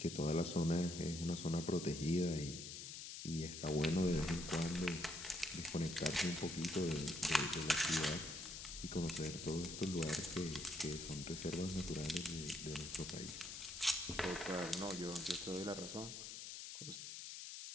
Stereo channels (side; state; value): left; noise; hiss, 8 dB below the sound